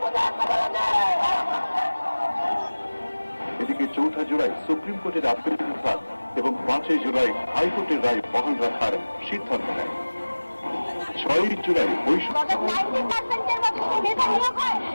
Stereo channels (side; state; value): both; inverted; correlation -1.00